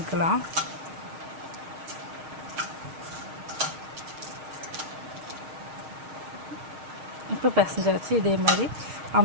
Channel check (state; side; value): late; left; 6.4 ms